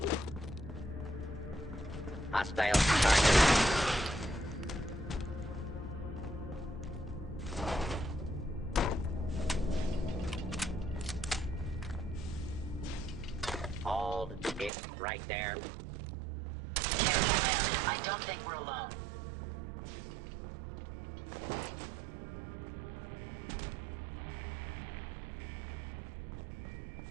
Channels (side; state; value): left; drops out; at 14.7 s